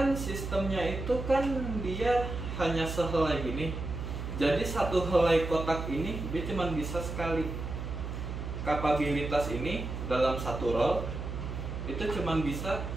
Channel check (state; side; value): noise; right; hum, 5 dB below the sound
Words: sistemnya itu kan dia hanya sehelai gini. Jadi satu helai kotak ini dia cuma bisa sekali. Kapabilitas ini dalam satu roll itu cuma bisa